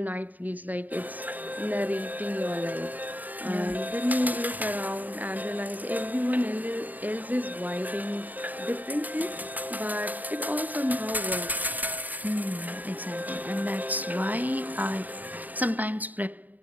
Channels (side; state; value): left; late; 0.082 ms